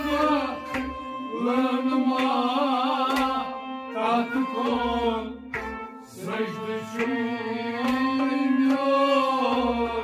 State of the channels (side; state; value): both; identical; correlation 1.00